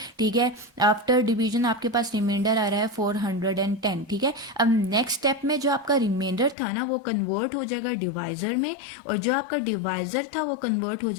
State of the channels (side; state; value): right; drops out; at 6.6 s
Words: ठीक है। आफ्टर डिवीजन आपके पास रिमाइंडर आ रहा है 410, ठीक है। अब नेक्स्ट स्टेप में जो आपका रिमाइंडर था ना वो कन्वर्ट हो जाएगा डिवाइजर में, और जो आपका डिवाइजर था वो कन्वर्ट हो